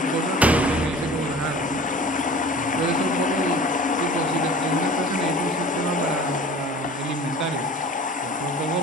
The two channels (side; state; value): both; normal; correlation 0.42